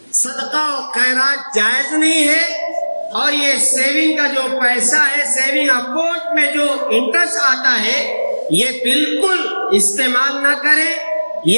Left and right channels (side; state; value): both; inverted; correlation -1.00